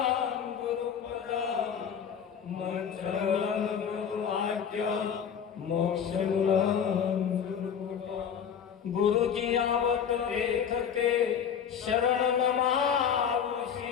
गुरुपदं मंत्रमूलं गुरुवाक्य मोक्षमूलं गुरुकृपा गुरुजी आवत लेखके शरण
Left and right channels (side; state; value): right; quieter; 7.8 dB